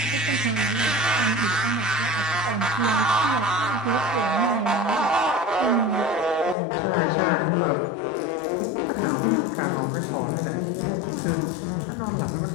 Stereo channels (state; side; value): drops out; right; at 6.6 s